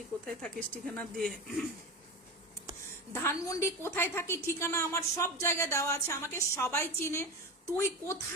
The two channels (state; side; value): normal; both; correlation 0.23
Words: কোথায় থাকিস ঠিকানা দিয়ে। ধানমন্ডি কোথায় থাকি ঠিকানা আমার সব জায়গায় দেওয়া আছে, আমাকে সবাই চিনে। তুই